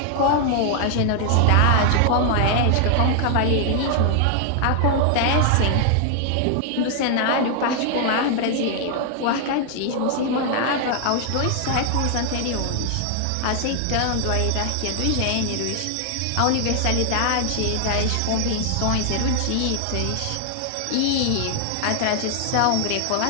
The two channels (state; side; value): different; both; correlation 0.00